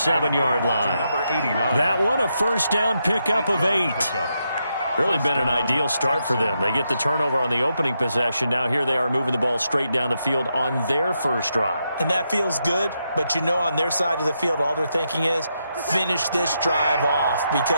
line. That one, a first down pickup of 8. Really been an ideal start for them. They get the turnover on the opening possession. Now here they are moving the ball straight down the field on their first drive. And that feels good, but you know on their side of the field, all they're thinking is finish this drive off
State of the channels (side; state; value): both; inverted; correlation -0.82